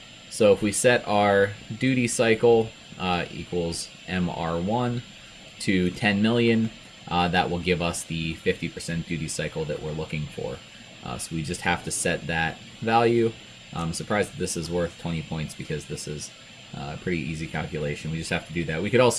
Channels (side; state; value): both; identical; correlation 1.00